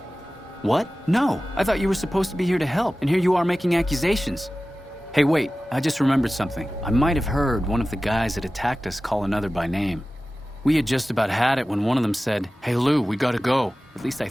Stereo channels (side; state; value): both; normal; correlation 0.96